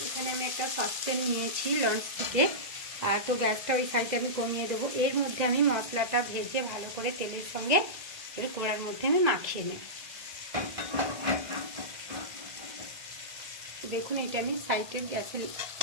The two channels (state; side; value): late; left; 2.0 ms